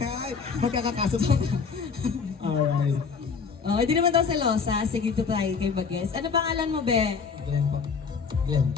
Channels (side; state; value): right; quieter; 5.6 dB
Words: Ay, magkakakaso pa. Alright. Oh, hindi naman daw selosa. Sige, dito tayo kay Bages. Ano pangalan mo, be? Glenn po. Glenn.